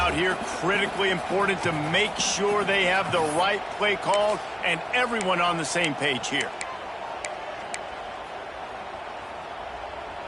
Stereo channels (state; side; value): identical; both; correlation 1.00